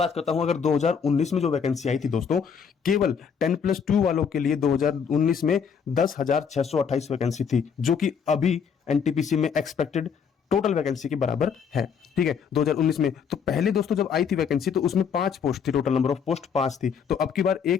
करता हूं, अगर 2019 में जो वैकेंसी आई थी दोस्तों, केवल 10+2 वालों के लिए 2019 में 10,628 वैकेंसी थी, जो कि अभी एनटीपीसी में एक्सपेक्टेड टोटल वैकेंसी के बराबर है। ठीक है, 2019 में तो पहले दोस्तों जब आई थी वैकेंसी तो उसमें 5 पोस्ट थी, टोटल नंबर ऑफ पोस्ट 5 थी। तो अब की बार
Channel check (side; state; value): right; quieter; 6.8 dB